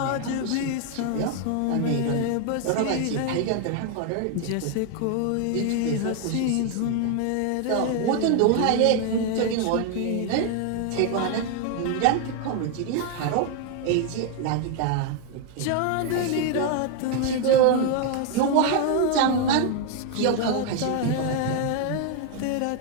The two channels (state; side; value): different; both; correlation 0.00